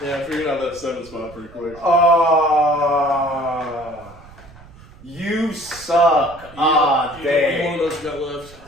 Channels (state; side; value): noise; right; rumble, 22 dB below the sound